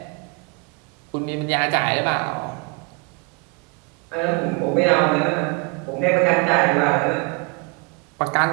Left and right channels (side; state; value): left; quieter; 30.0 dB